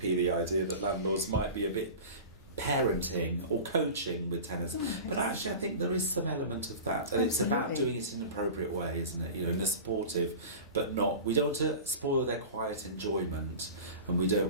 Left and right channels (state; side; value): inverted; both; correlation -0.33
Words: the idea that landlords might be a bit parenting or coaching with tenants. But actually I think there is some element of that, and it's about doing it in an appropriate way, isn't it? In a supportive, but not, we don't want to spoil their quiet enjoyment, and we don't